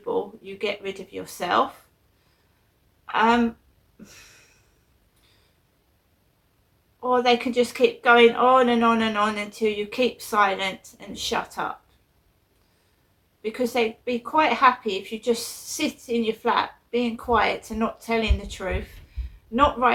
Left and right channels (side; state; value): both; identical; correlation 1.00